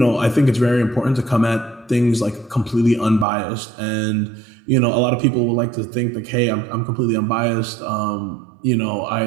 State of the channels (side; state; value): left; drops out; at 3.2 s